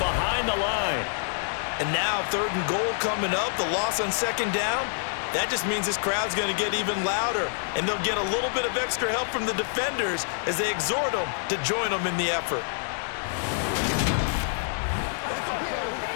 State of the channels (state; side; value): silent; right; digital silence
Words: behind the line. And now 3rd and goal coming up, the loss on 2nd down. That just means this crowd's going to get even louder, and they'll get a little bit of extra help from the defenders as they exhort them to join them in the effort.